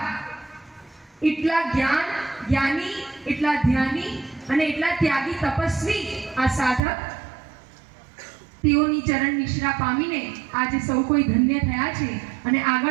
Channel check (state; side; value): drops out; left; at 6.8 s